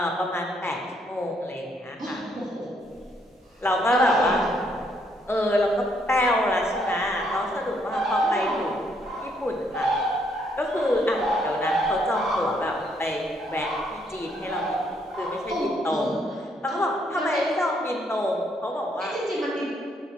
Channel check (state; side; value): normal; both; correlation 0.71